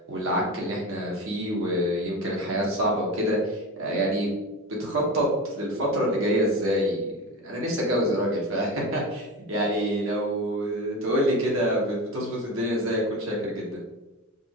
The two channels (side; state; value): both; normal; correlation 0.26